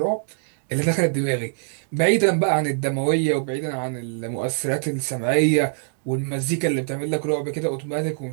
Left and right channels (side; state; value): left; silent; digital silence